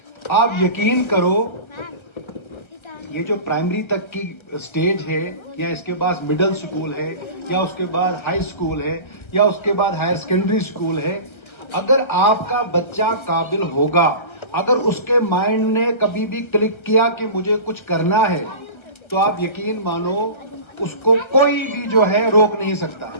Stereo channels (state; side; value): late; right; 1.3 ms